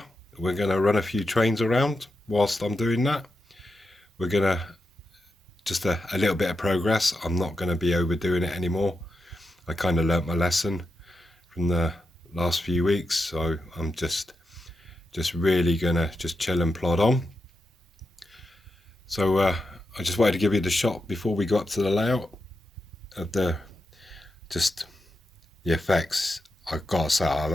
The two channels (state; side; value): normal; both; correlation 0.87